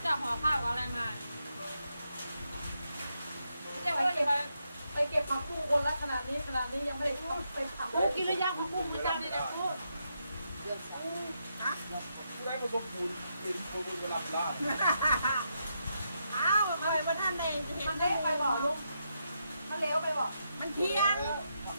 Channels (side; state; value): both; inverted; correlation -0.82